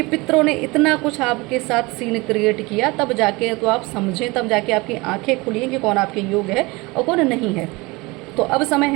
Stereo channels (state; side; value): quieter; left; 24.0 dB